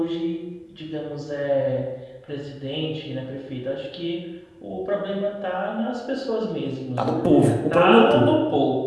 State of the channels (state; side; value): identical; both; correlation 1.00